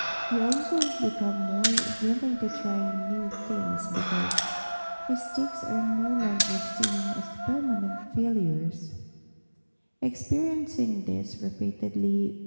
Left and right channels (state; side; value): inverted; both; correlation -1.00